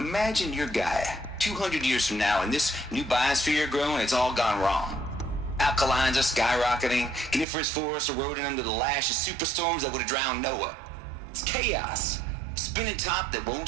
you're Gaia, 200 years from now, and this new biosphere you're growing, it's all gone wrong. Alkalines are skyrocketing, coniferous forests eroding under the lash of superstorms that would have drowned Noah. It's chaos, a spinning top that won't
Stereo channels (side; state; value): left; drops out; at 7.5 s